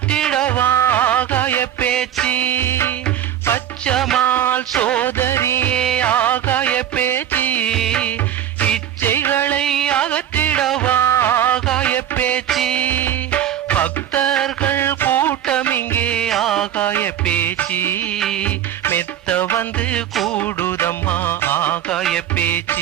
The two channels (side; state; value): left; quieter; 10.7 dB